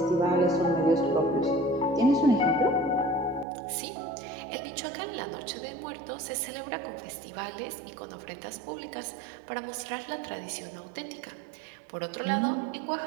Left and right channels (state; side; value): drops out; left; at 3.5 s